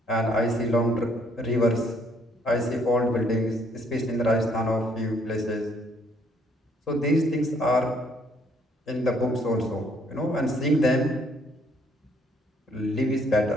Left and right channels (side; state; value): both; normal; correlation 0.66